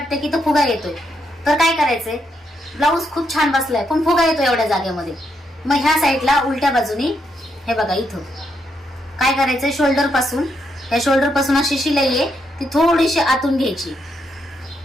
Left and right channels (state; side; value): normal; both; correlation 0.79